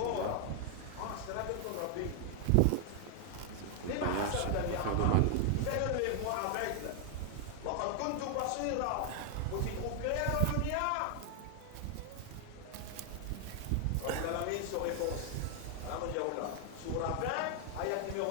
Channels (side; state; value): both; different; correlation 0.00